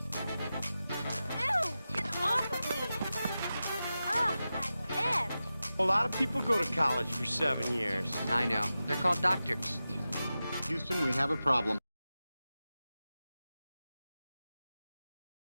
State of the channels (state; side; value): inverted; both; correlation -0.93